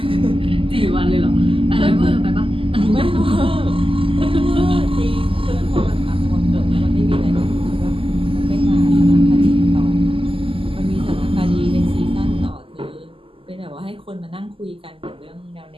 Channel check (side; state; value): left; late; 0.26 ms